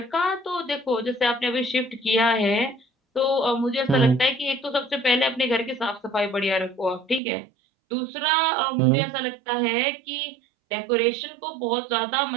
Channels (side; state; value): left; drops out; at 7.2 s